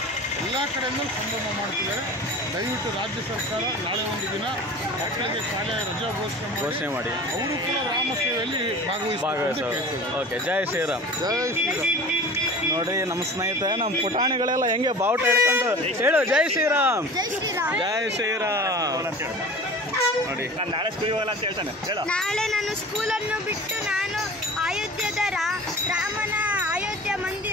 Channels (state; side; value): normal; both; correlation 0.39